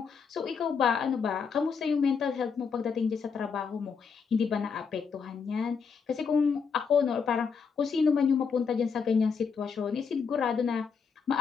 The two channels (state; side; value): quieter; right; 5.9 dB